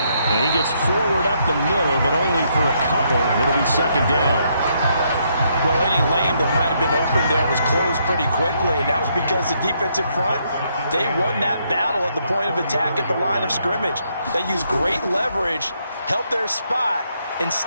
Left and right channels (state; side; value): inverted; both; correlation -0.74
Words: And he gets forward up the middle, but only for a couple. It'll be 2nd down. Well, any lane that might have been open there was closed pretty quickly, and that was because the defensive front, they won that battle at the point of attack at the line of scrimmage. They used great leverage, held their spot, and